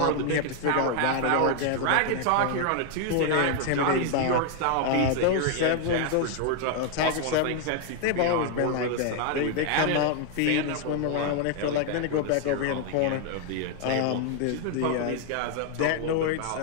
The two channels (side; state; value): both; different; correlation 0.00